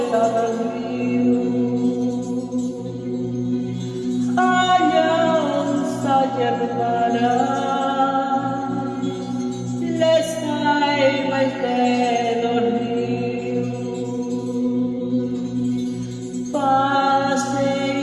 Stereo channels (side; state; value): both; identical; correlation 1.00